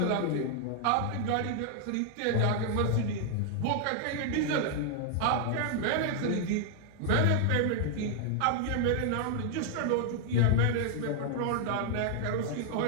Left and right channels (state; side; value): different; both; correlation 0.00